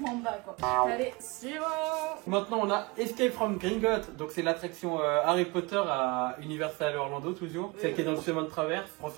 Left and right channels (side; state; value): left; quieter; 25.7 dB